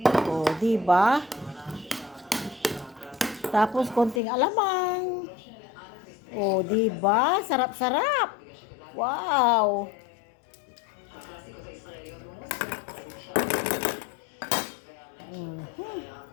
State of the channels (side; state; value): right; drops out; at 4.2 s